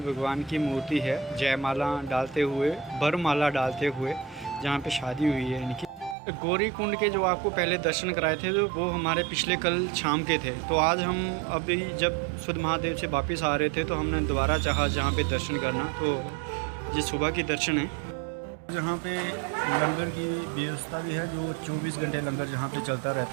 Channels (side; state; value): left; drops out; at 6.2 s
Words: भगवान की मूर्ति है जयमाला डालते हुए, वरमाला डालते हुए, जहाँ पे शादी हुई है इनकी। गौरी कुंड के जो आपको पहले दर्शन कराए थे तो वो हमारे पिछले कल शाम के थे। तो आज हम अभी जब शुद्ध महादेव से वापस आ रहे थे तो हमने दोबारा चाहा जहाँ पे दर्शन करना, तो ये सुबह की दर्शन है। जहाँ पे लंगर की व्यवस्था भी है, जो 24 घंटे लंगर जहाँ पे चलता